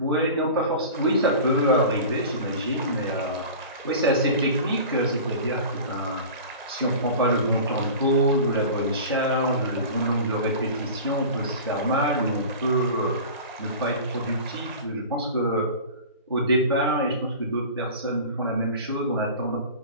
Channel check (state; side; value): inverted; both; correlation -0.36